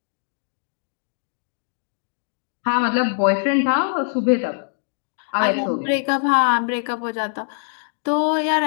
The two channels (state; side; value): silent; right; digital silence